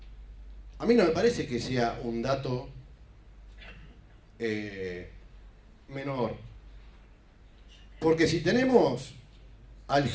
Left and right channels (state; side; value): identical; both; correlation 1.00